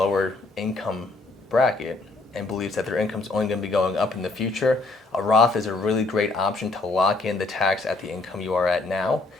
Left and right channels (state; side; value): quieter; right; 3.4 dB